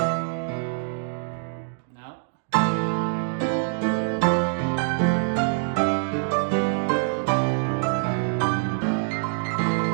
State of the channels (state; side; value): silent; left; 62 dB below the other